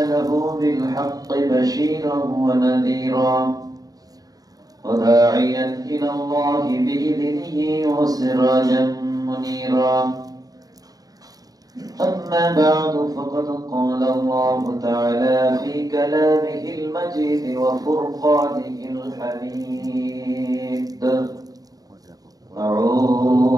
بالحق بشيرا ونذيرا وداعيا إلى الله بإذنه وسراجا منيرا. أما بعد فقد قال الله تعالى في كلامه المجيد وفرقانه الحميد:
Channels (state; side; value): late; left; 0.18 ms